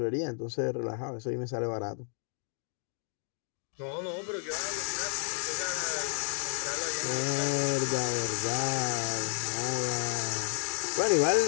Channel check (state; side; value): silent; right; 57 dB below the other